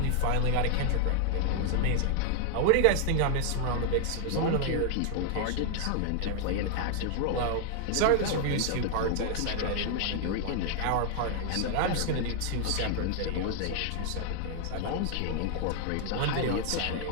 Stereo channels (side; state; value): both; different; correlation 0.00